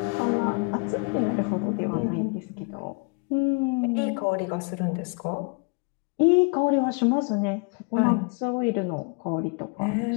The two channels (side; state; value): right; quieter; 33.8 dB